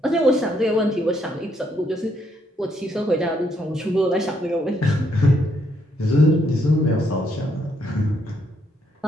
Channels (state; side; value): normal; both; correlation 0.73